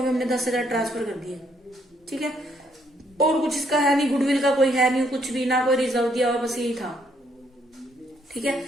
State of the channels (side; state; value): both; normal; correlation 0.71